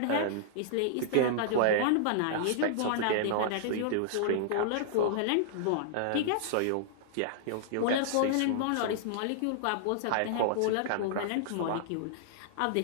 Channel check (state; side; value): different; both; correlation -0.01